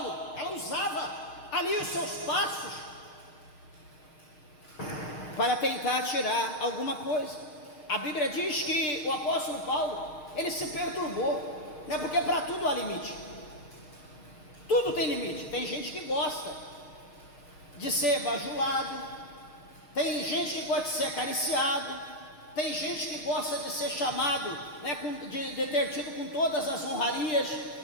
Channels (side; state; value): right; late; 6.5 ms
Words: ela usava ali os seus passos para tentar tirar alguma coisa. A Bíblia diz que o apóstolo Paulo, ele se perturbou, né? Porque para tudo há limite, tudo tem limite. Tem gente que gosta de ser bajulado, tem gente que gosta de ser acariciado, tem gente que gosta de ser chamado, né, de ter tido com todas as honrarias.